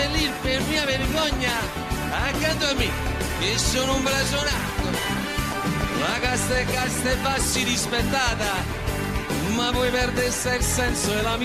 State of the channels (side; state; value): both; identical; correlation 1.00